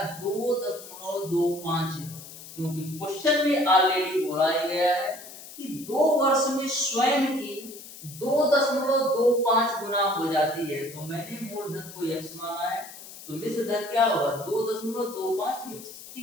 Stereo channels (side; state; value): left; noise; hiss, 15 dB below the sound